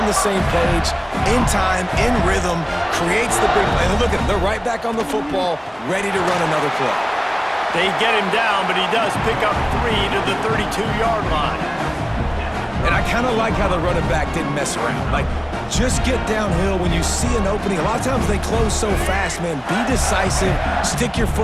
the same page, in time, in rhythm, creates the big play. And look at them, they're right back on the football, ready to run another play. They get him down, but he does pick up 3 to the 32-yard line. And I kind of like how the running back didn't mess around. Like, just get downhill when you see an opening. A lot of times they close so fast, man. Be decisive, stick your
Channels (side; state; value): both; identical; correlation 1.00